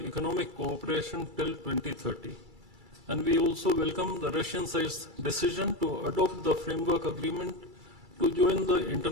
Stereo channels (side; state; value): left; late; 2.3 ms